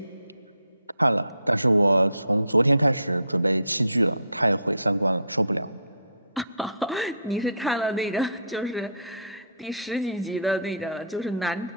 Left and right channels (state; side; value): inverted; both; correlation -0.60